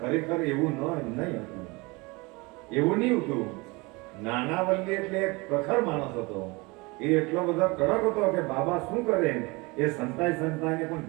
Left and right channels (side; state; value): left; quieter; 25.6 dB